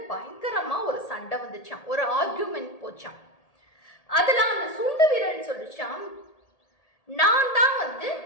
பயங்கரமா ஒரு சண்டை வந்துச்சான், ஒரு ஆர்கியூமெண்ட் போச்சான். அதுல அந்த சுண்டு விரல் சொல்லிச்சான், நான் தான்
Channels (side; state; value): right; late; 1.8 ms